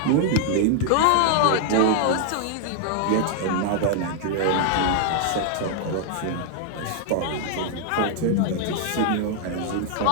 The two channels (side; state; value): both; different; correlation 0.00